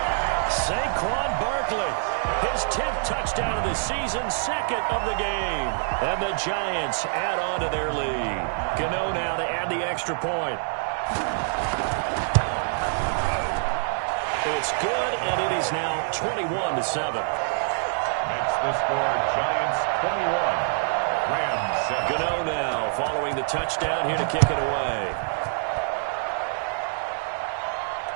Saquon Barkley, his 10th touchdown of the season, 2nd of the game. And the Giants add on to their lead. Gano now to add the extra point. It's good, and it is now 21-7. Makes the score Giants 21, Rams 7. Gano now following the touchdown here to kick it away.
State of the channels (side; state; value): left; silent; digital silence